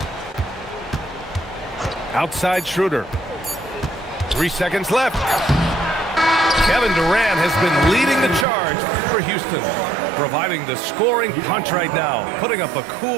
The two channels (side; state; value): left; drops out; at 8.5 s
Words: Outside Schroeder. 3 seconds left. Kevin Durant has been leading the charge for Houston, providing the scoring punch right now, putting up a